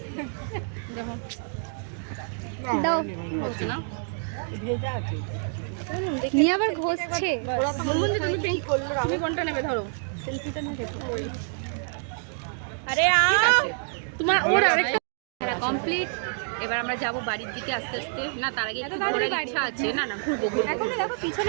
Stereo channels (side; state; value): left; silent; digital silence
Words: দাও নিয়ে আবার ঘষছে। তুমি কোনটা নেবে ধরো। আরে তোমার ওর আরেকটা খেলা কমপ্লিট। এবার আমরা যাব বাড়ির দিকে আস্তে আস্তে। না তার আগে একটু ঘোরার ইচ্ছা আছে। না না ঘুরবো ঘুরবো। এখনো দেখো